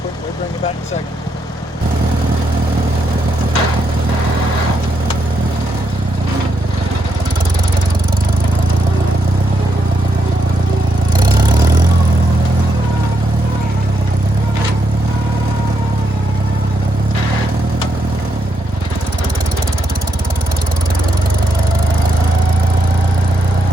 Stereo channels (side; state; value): both; normal; correlation 0.80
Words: We'll bring it back in a second.